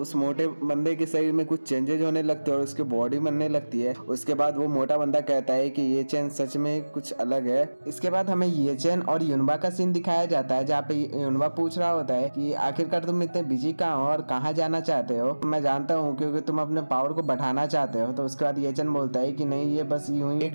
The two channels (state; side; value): inverted; both; correlation -1.00